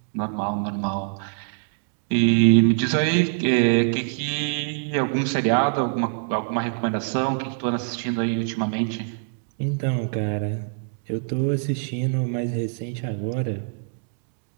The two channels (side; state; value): left; silent; digital silence